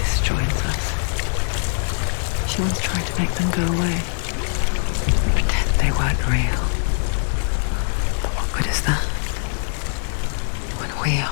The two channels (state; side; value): silent; right; digital silence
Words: joins us. She once tried to make them go away. Pretend they weren't real. But what good is that? When we